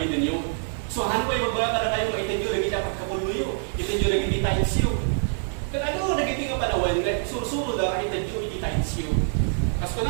ninyo. So han ko magbaga kada kayo itinyo lagi dapat kapuluyo, itinyo lagi iti tainsiyo. Kaya ano nagiti nga panawan, susuro da itinyo iti tainsiyo. Kas ko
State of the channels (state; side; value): silent; left; digital silence